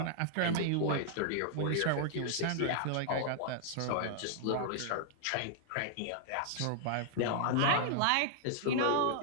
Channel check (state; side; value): different; both; correlation -0.01